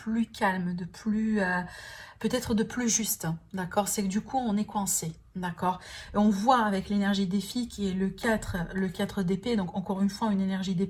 calme, de plus... peut-être de plus juste, d'accord? C'est que du coup, on est coincé, d'accord? Et on voit avec l'énergie des filles qui est le 4 d'épée, donc encore une fois, une énergie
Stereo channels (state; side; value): identical; both; correlation 1.00